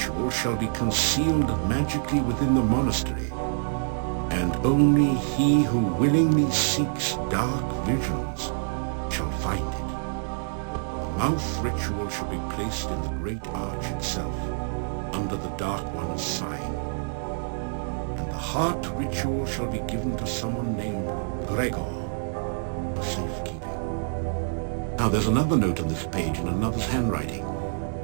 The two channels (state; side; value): silent; left; digital silence